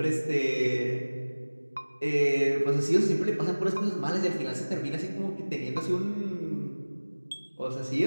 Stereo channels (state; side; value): inverted; both; correlation -1.00